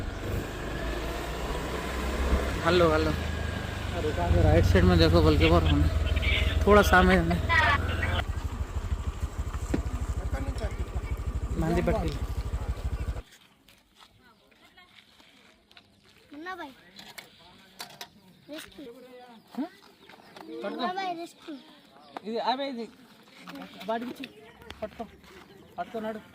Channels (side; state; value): both; identical; correlation 1.00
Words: हेलो राइट साइड में देखो बल्कि और थोड़ा सामने मंदी पट्टी मुन्ना भाई रेस्क्यू ఇది అవే ఇది వాడికి పట్టుకున్నాడు